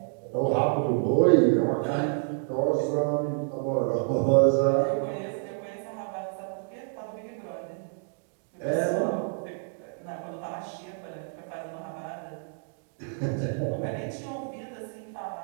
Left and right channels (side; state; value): left; silent; 59 dB below the other